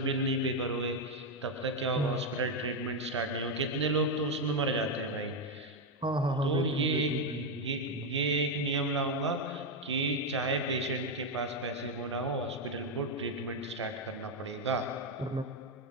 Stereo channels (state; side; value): normal; both; correlation 0.05